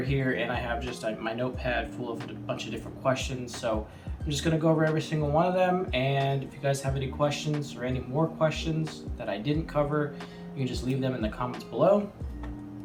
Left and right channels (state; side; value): identical; both; correlation 1.00